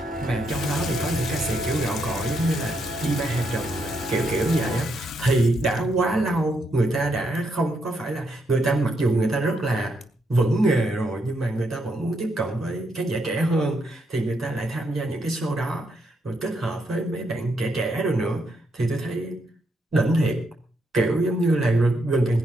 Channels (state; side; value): normal; both; correlation 0.78